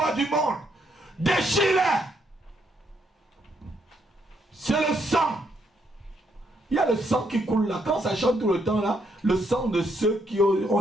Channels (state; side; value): normal; both; correlation 0.74